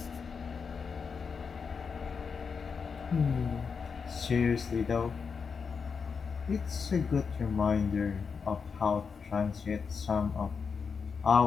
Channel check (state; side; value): quieter; right; 5.7 dB